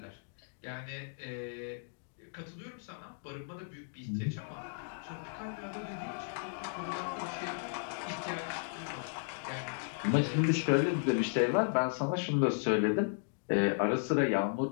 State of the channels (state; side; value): silent; right; digital silence